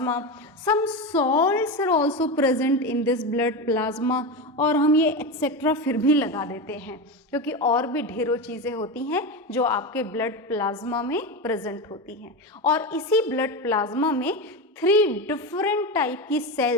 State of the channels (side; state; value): both; normal; correlation 0.18